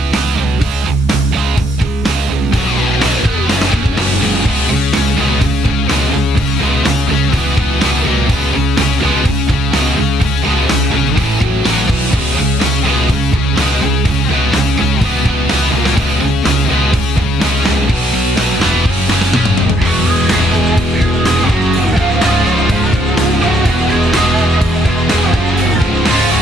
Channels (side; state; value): both; normal; correlation 0.70